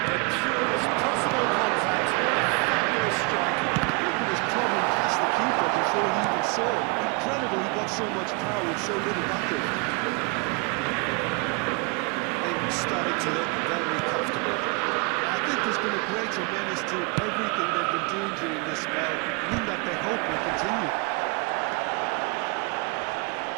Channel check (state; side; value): quieter; left; 30.3 dB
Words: The purest possible contact. What a fabulous strike. I think it was probably past the keeper before he even saw it. Incredible he got so much power with so little backup. Starting to look very comfortable. I think there's been a greater menace to everything they've been doing during this spell, one that they hope will continue.